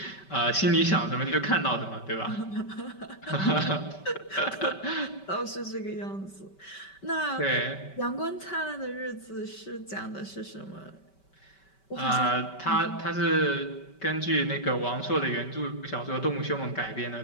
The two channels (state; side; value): late; right; 5.2 ms